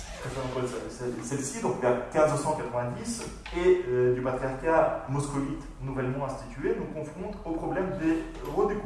celle-ci, donc vers 1590, et du patriarcat moscovite nouvellement institué, nous confronte au problème des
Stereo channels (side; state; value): both; identical; correlation 1.00